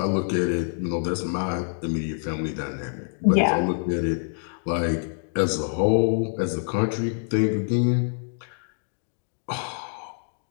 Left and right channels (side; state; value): right; silent; digital silence